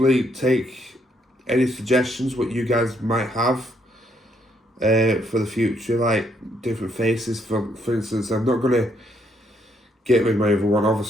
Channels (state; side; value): normal; both; correlation 0.72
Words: take any suggestions what you guys might have for the future, like different faces. For instance, I'm not gonna get rid of my other one,